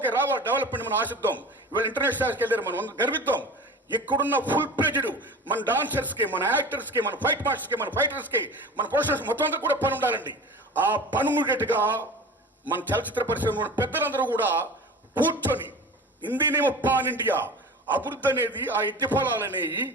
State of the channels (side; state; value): both; normal; correlation 0.36